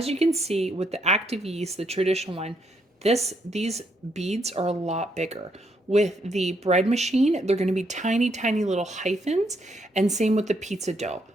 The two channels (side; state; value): both; normal; correlation 0.75